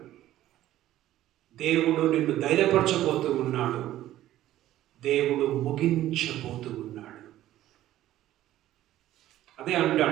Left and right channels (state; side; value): quieter; left; 13.8 dB